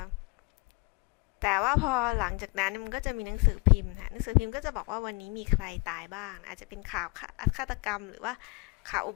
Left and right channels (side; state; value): right; quieter; 27.7 dB